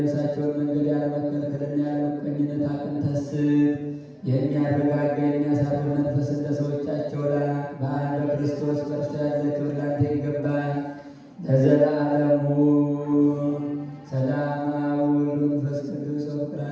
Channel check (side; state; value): both; identical; correlation 1.00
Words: መንገድ ያለመከልከልና ያለመቀኝነት አቅንተህ ስጥ። የሚያረጋጋ የሚያሳርፍ መንፈስ እንደ ሰዎቻቸው ላክ። በአንድ በክርስቶስ በእርሱ ያለ ክብር ላንተ ይገባል ለዘላለሙ። ሰላም አብ ወወልድ ወመንፈስ ቅዱስ ወፍቅር